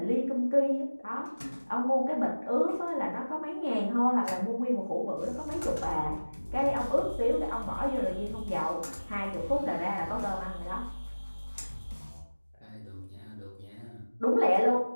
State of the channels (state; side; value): inverted; both; correlation -1.00